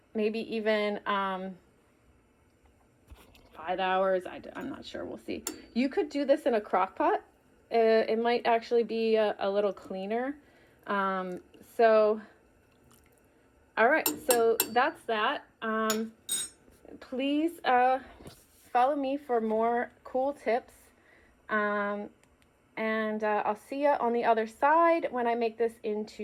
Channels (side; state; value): both; identical; correlation 1.00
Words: maybe even 5 hours. I'm not sure. We'll see. You could do this in a crock pot. It might actually be a little cleaner. All right. So that's that. Please follow me for more cool tips. And I'll see you on the other side when I make this